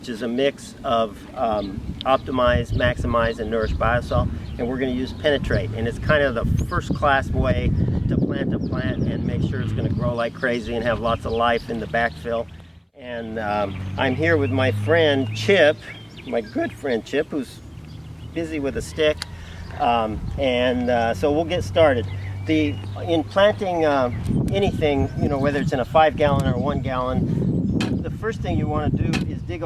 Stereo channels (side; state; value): both; identical; correlation 1.00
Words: is a mix of Optimize, Maximize, and Nourish Biosol, and we're going to use Penetrate, and it's kind of the first-class way to plant a plant and make sure it's going to grow like crazy and have lots of life in the backfill. And I'm here with my friend Chip, my good friend Chip, who's busy with a stick, so we'll get started. In planting anything, you know, whether it's in a 5-gallon or 1 gallon, the first thing you want to do is dig